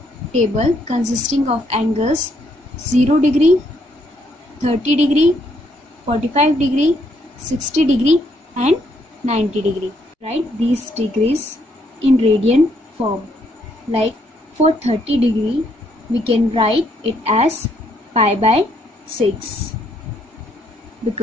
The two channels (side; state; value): both; normal; correlation 0.72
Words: table consisting of angles 0 degree, 30 degree, 45 degree, 60 degree and 90 degree. Write these degrees in radian form. Like for 30 degree, we can write it as pi by 6,